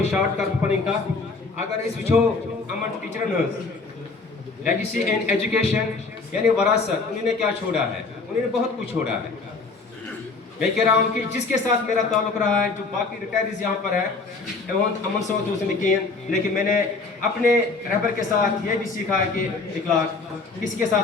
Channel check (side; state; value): right; quieter; 4.0 dB